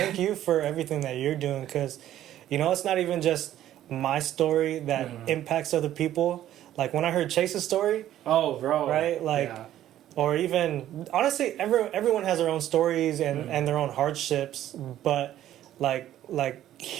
you for everything that you're doing, because, you know, it's not even just my story that impacts other people. Like when I heard Chase's story, oh, bro, right? Like, yeah. or even honestly, everyone has their own stories and their own hardships, but like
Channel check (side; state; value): left; quieter; 12.4 dB